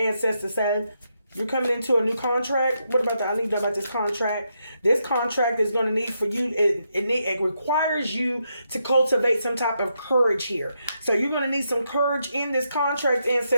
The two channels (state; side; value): inverted; both; correlation -0.81